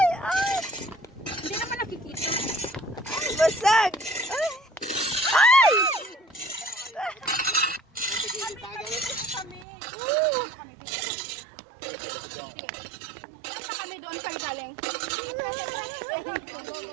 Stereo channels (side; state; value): left; drops out; at 9.7 s